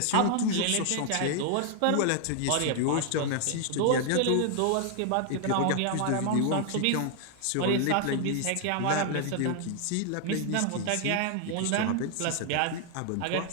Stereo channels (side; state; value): both; different; correlation 0.00